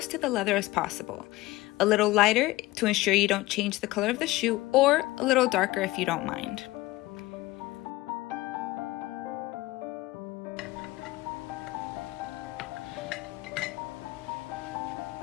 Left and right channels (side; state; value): right; quieter; 19.1 dB